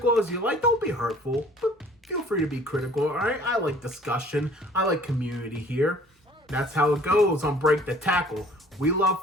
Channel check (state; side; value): normal; both; correlation 0.53